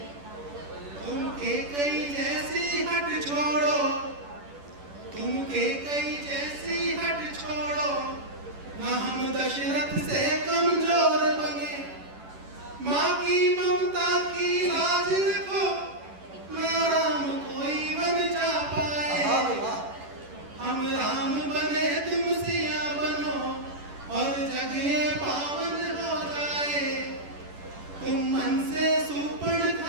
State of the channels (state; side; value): late; left; 10 ms